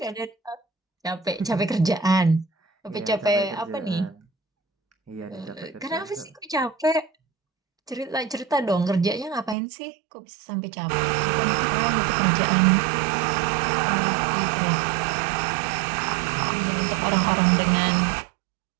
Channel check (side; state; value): left; drops out; at 9.6 s